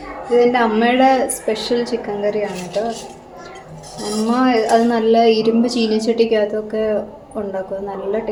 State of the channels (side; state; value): both; identical; correlation 1.00